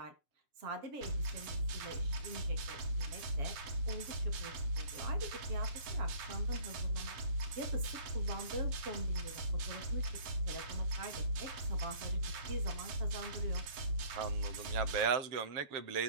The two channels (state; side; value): late; left; 7.1 ms